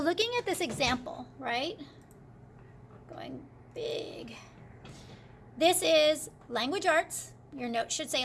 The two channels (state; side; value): identical; both; correlation 1.00